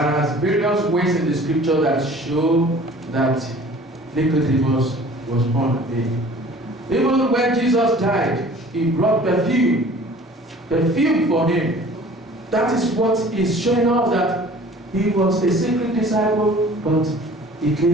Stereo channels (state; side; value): normal; both; correlation 0.48